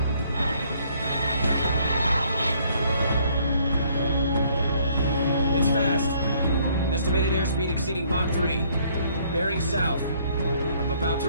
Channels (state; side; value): inverted; both; correlation -0.63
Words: It's fast. Estimated airspeed exceeding Mach 3. Bearing south. I'm about to